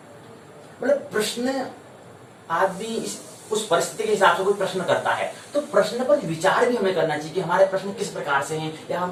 मतलब प्रश्न आदमी उस परिस्थिति के हिसाब से कोई प्रश्न करता है, तो प्रश्न पर विचार भी हमें करना चाहिए कि हमारे प्रश्न किस प्रकार से हैं, या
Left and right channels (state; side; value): identical; both; correlation 1.00